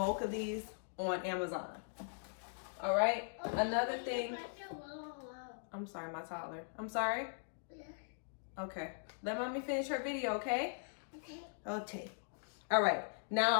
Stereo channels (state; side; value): silent; right; digital silence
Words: of these on Amazon. All right. Another thing. I'm sorry, my toddler. I'm sorry. Okay. Let mommy finish her video, okay? Okay. All right.